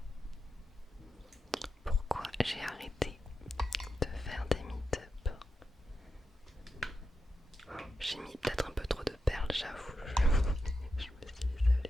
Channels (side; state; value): both; normal; correlation 0.88